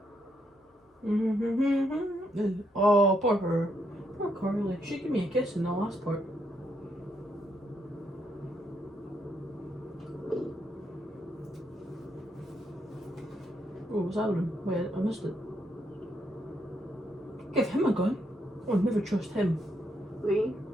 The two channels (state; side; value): normal; both; correlation 0.77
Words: Oh, poor her. Poor Carly. She gave me a kiss in the last part. Oh, what's happening? Wait, I missed it. Give him a gun. I would never trust him. Lee,